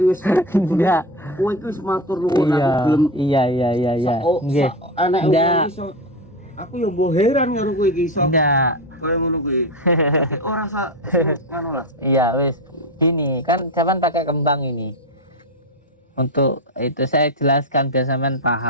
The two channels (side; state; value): both; normal; correlation 0.17